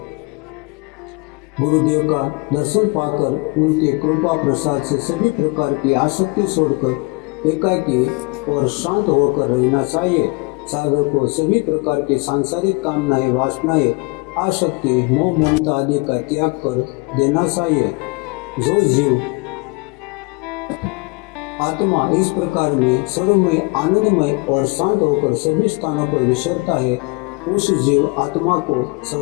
गुरुदेव का दर्शन पाकर उनके कृपा प्रसाद से सभी प्रकार की आसक्ति छोड़कर एकाकी और शांत होकर रहना चाहिए। साधक को सभी प्रकार की सांसारिक कामनाएं वासनाएं आसक्ति मोह ममता आदि का त्याग कर देना चाहिए। जो जीव आत्मा इस प्रकार में सर्वमय, आनंदमय और शांत होकर सभी स्थानों पर विचरता है, उस जीव आत्मा को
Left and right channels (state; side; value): quieter; right; 27.2 dB